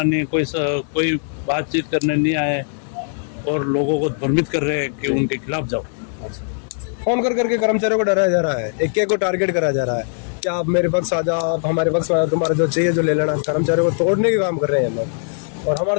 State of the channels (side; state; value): right; silent; digital silence